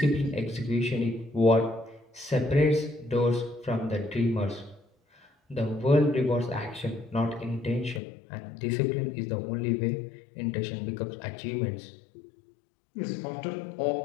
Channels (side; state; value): right; drops out; at 8.0 s